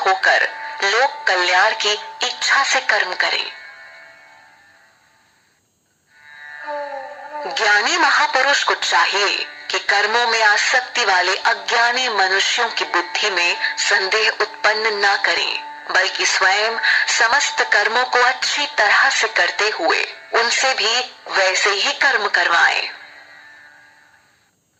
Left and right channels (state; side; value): identical; both; correlation 1.00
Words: लोक कल्याण की इच्छा से कर्म करें। ज्ञानी महापुरुष को चाहिए कि कर्मों में आसक्ति वाले अज्ञानी मनुष्यों की बुद्धि में संदेह उत्पन्न न करें, बल्कि स्वयं समस्त कर्मों को अच्छी तरह से करते हुए उनसे भी वैसे ही कर्म करवाएं।